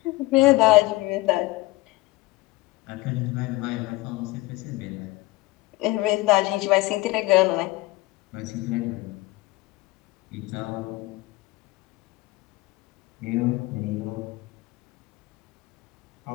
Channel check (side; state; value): right; quieter; 20.0 dB